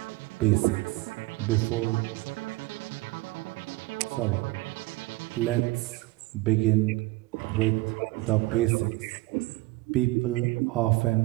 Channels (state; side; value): quieter; left; 20.9 dB